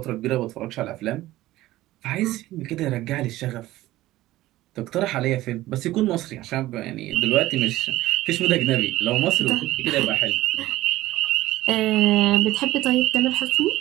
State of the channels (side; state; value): left; quieter; 16.4 dB